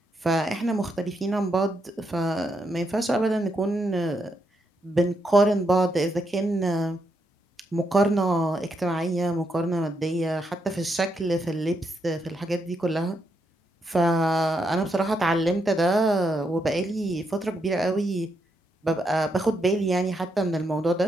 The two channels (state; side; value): normal; both; correlation 0.80